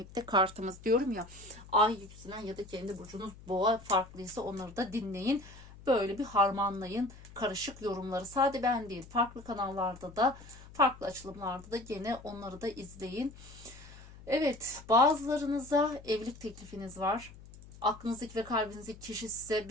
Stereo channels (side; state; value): left; noise; hum, 19 dB below the sound